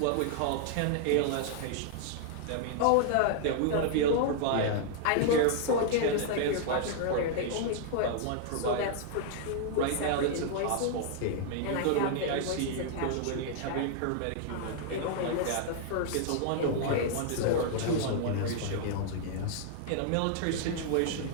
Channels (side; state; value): both; different; correlation -0.01